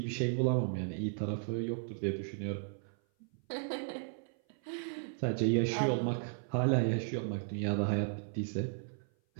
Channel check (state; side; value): silent; left; 54 dB below the other